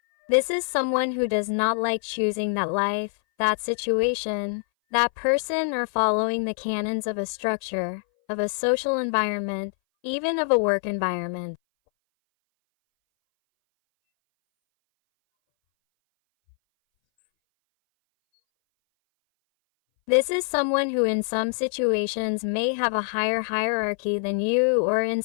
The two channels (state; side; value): silent; right; 60 dB below the other